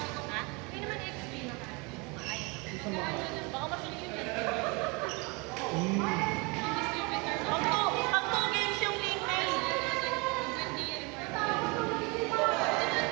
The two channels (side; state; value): left; quieter; 29.0 dB